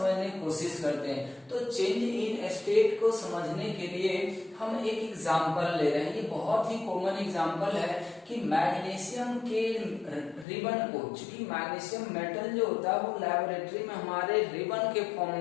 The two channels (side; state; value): right; drops out; at 10.5 s